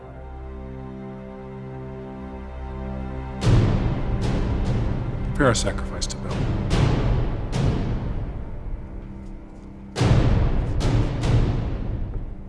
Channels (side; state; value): both; identical; correlation 1.00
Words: Prepare a sacrifice to Bel.